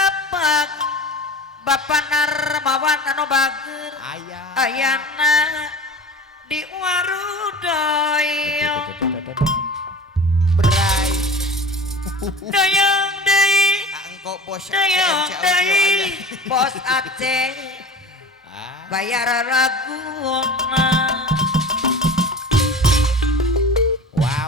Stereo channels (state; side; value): normal; both; correlation 0.36